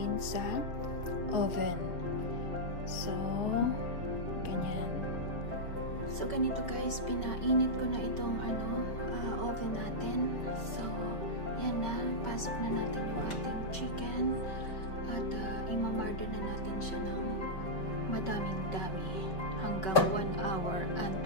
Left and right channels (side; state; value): right; late; 5.2 ms